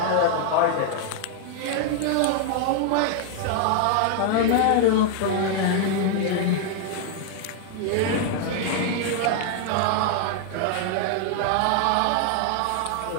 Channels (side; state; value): both; different; correlation 0.00